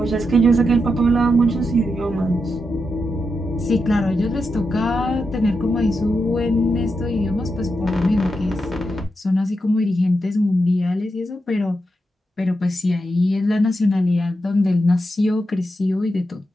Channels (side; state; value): both; normal; correlation 0.86